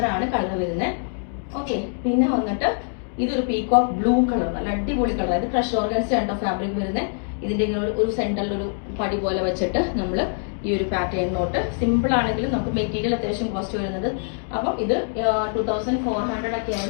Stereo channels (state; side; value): silent; right; 63 dB below the other